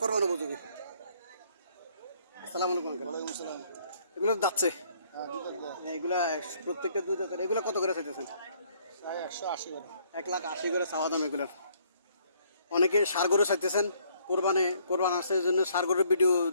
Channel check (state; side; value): inverted; both; correlation -0.65